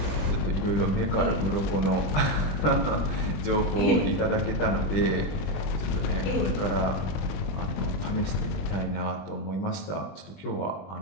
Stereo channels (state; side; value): late; right; 20 ms